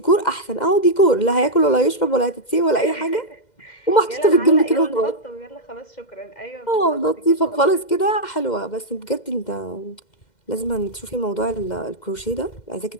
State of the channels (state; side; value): late; right; 2.1 ms